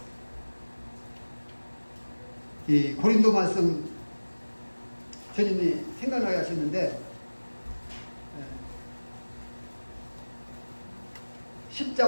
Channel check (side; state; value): both; inverted; correlation -1.00